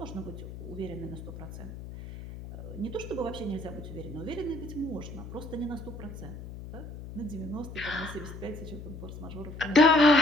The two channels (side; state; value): left; noise; hum, 11 dB below the sound